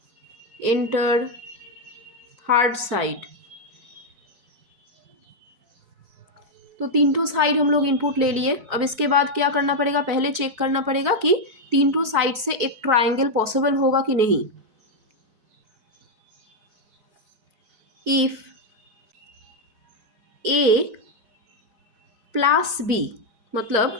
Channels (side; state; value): left; late; 4.0 ms